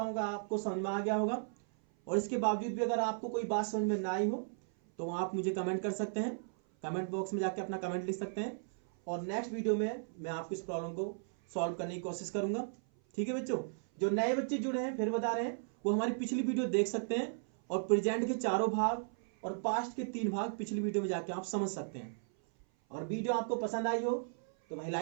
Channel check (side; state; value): left; silent; 54 dB below the other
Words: हूँ कि आपको समझ में आ गया होगा। और इसके बावजूद भी अगर आपको कोई बात समझ में ना आई हो तो आप मुझे कमेंट कर सकते हैं, कमेंट बॉक्स में जाके अपना कमेंट लिख सकते हैं, और नेक्स्ट वीडियो में मैं आपकी इस प्रॉब्लम को सॉल्व करने की कोशिश करूंगा, ठीक है बच्चों। जो नए बच्चे जुड़े हैं फिर बता रहे हैं, वो हमारी पिछली वीडियो देख सकते हैं, और प्रेजेंट के 4 भाग और पास्ट के 3 भाग पिछली वीडियो में जाके आप समझ सकते हैं। और वीडियो आपको पसंद आई हो तो भाई